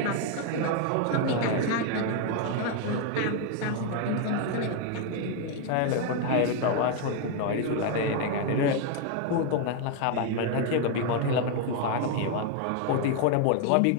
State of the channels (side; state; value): both; different; correlation 0.00